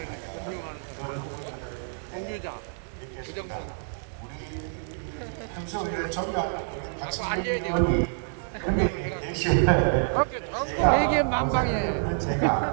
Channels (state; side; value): silent; left; digital silence